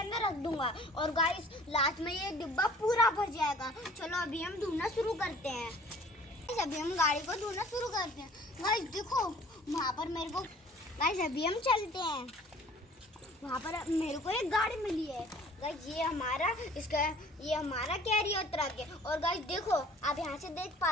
रख दूंगा और गाइस लास्ट में ये डिब्बा पूरा भर जाएगा। चलो अभी हम ढूंढना शुरू करते हैं। अभी हम गाड़ी को ढूंढना शुरू करते हैं। गाइस देखो वहाँ पर मेरे को, गाइस अभी हम चलते हैं। वहाँ पर मेरे को एक गाड़ी मिली है। गाइस ये हमारा कैरियर ट्रक है। और गाइस देखो आप यहाँ से देख पा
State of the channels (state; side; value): normal; both; correlation 0.50